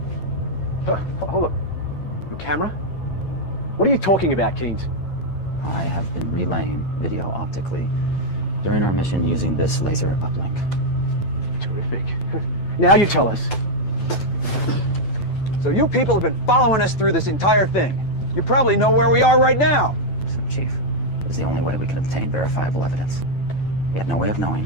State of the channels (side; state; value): right; late; 9.1 ms